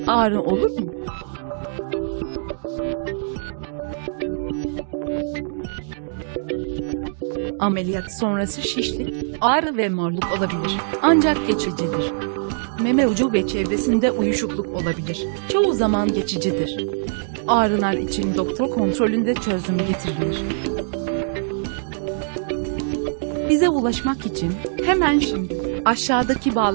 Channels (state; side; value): silent; left; digital silence